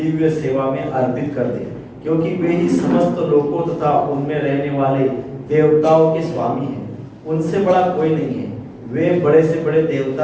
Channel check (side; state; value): both; identical; correlation 1.00